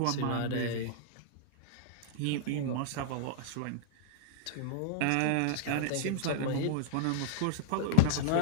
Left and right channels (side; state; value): both; different; correlation 0.00